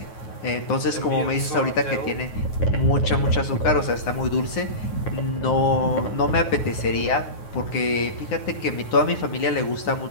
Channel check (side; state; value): right; late; 9.7 ms